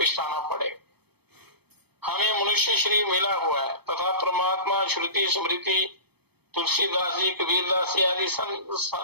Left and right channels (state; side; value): late; left; 0.97 ms